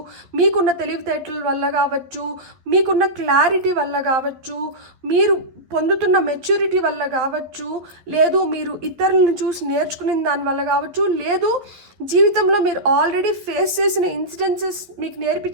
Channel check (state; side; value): late; left; 12 ms